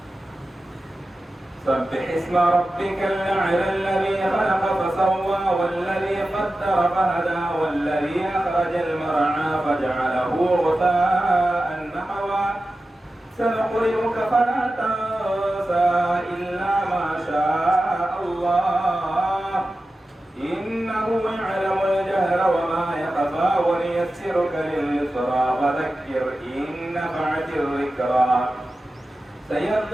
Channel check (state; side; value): normal; both; correlation 0.94